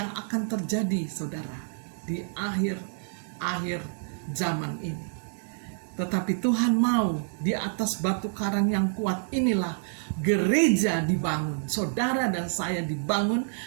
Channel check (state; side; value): silent; left; digital silence